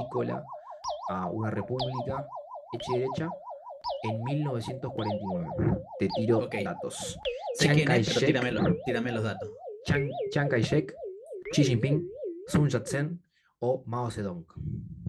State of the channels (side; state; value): both; identical; correlation 1.00